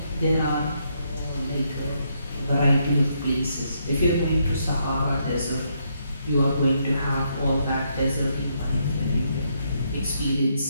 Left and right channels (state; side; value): inverted; both; correlation -0.76